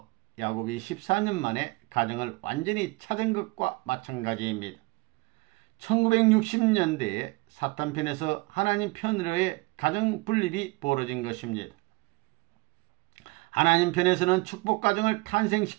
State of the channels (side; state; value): left; quieter; 25.1 dB